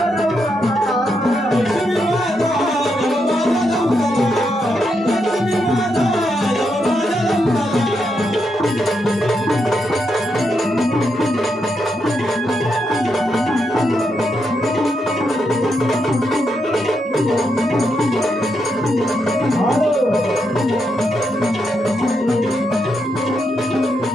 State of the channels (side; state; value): both; normal; correlation 0.81